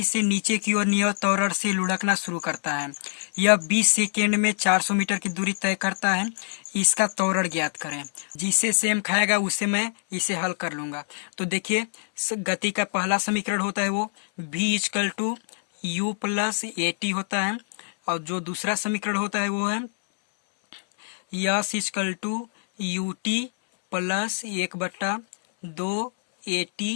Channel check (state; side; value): silent; right; 62 dB below the other